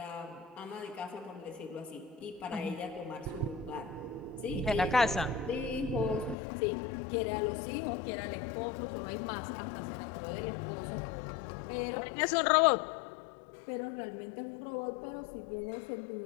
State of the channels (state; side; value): drops out; right; at 6.4 s